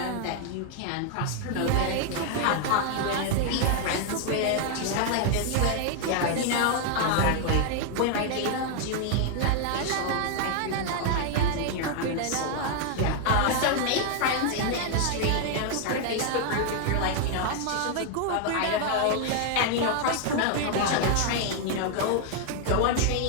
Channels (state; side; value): different; both; correlation 0.00